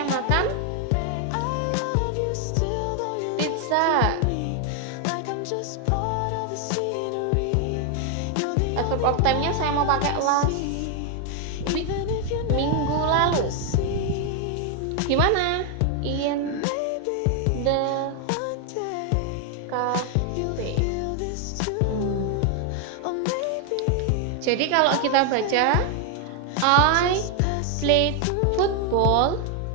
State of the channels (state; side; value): different; both; correlation 0.00